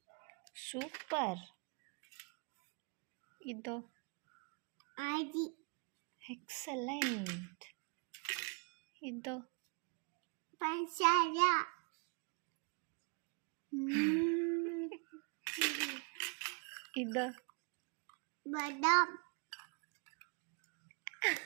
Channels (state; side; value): quieter; left; 33.5 dB